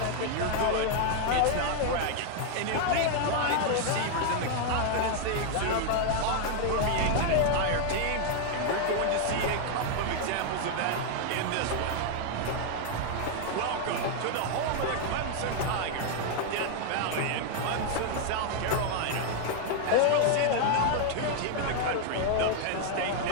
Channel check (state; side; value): different; both; correlation 0.00